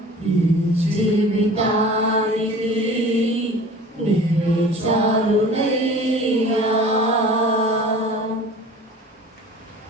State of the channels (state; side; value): normal; both; correlation 0.43